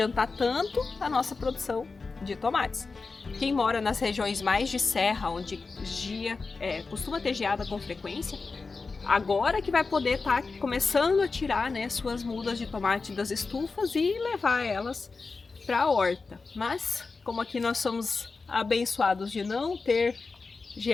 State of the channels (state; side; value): quieter; right; 4.2 dB